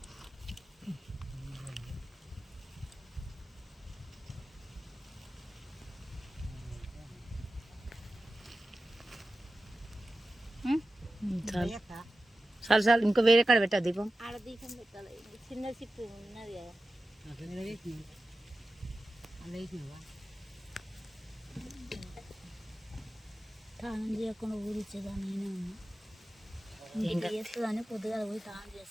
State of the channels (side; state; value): both; normal; correlation 0.94